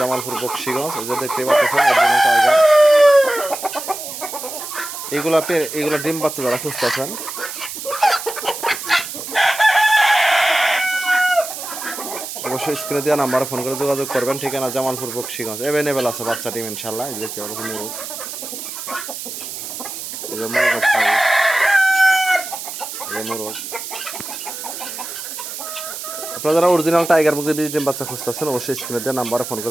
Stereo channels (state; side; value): noise; right; hiss, 8 dB below the sound